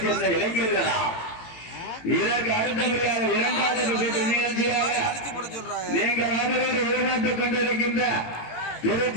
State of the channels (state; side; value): late; right; 18 ms